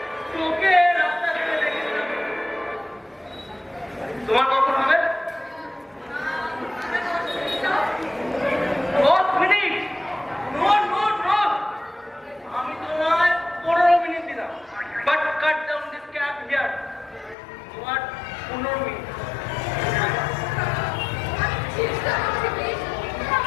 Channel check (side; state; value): right; drops out; at 17.4 s